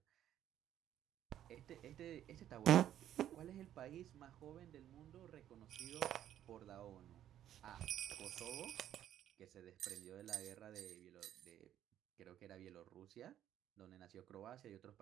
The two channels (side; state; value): left; quieter; 11.3 dB